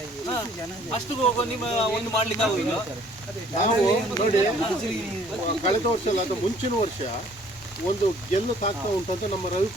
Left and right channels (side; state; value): both; normal; correlation 0.57